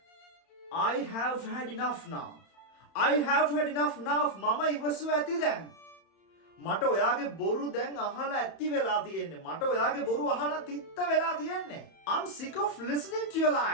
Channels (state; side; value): late; right; 31 ms